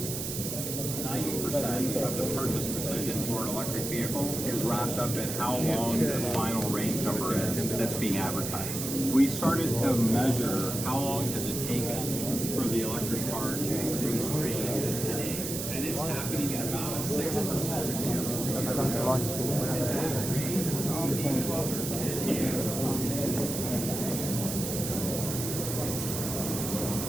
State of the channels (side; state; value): right; noise; hiss, 4 dB below the sound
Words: the purchase decision for an electric vehicle is wrapped up in how long the final range number is that's being advertised. We started to measure how long has it taken for the electric car to increase range today, and it's happening at about a 6%.